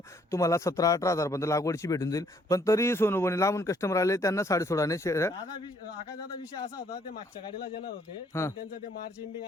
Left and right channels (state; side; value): normal; both; correlation 0.66